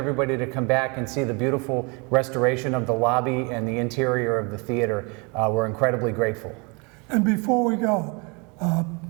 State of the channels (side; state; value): left; quieter; 30.7 dB